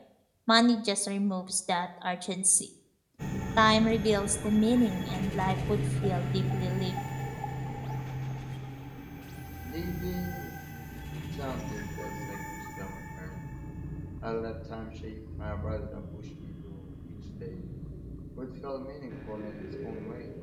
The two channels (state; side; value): identical; both; correlation 1.00